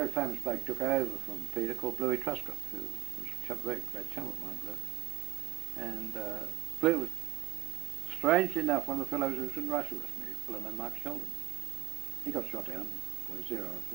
famous bloke took over from Peter called Bluey Truscott, who was a very great chum of mine, Blue. And Blue was, strangely enough, one of the fellows who was in Russia with me, a fellow named Mark Sheldon. He got shot down by Zero up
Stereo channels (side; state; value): left; quieter; 17.4 dB